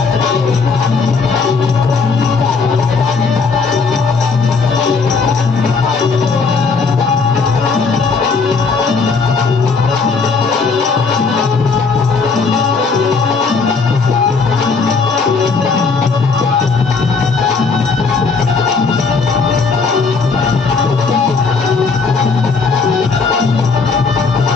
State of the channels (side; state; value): right; quieter; 4.7 dB